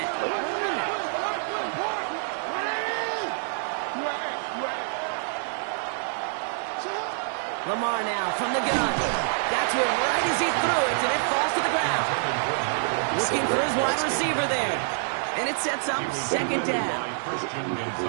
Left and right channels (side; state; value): left; silent; digital silence